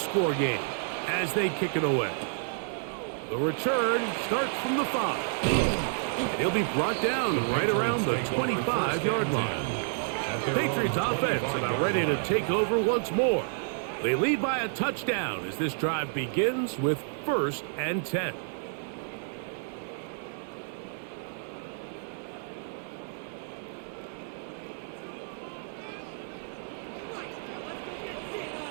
game as they kick it away. The return starts from the 5. He'll be brought down right around the 25-yard line. The Patriots offense about ready to take over once more. They lead by a touchdown as this drive begins with 1st and 10.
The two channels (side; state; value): left; silent; 58 dB below the other